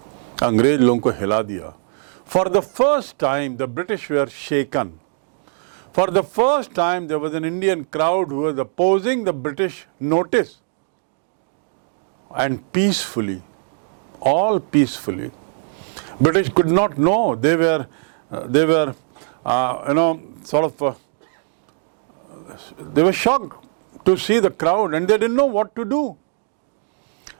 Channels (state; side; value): silent; left; digital silence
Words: अंग्रेज लोगों को हिला दिया. For the first time, the British were shaken. For the first time, there was an Indian crowd who was opposing the British notice. And peacefully, all peacefully. British could not know. They were they were shocked to see the crowd and they didn't know what to do.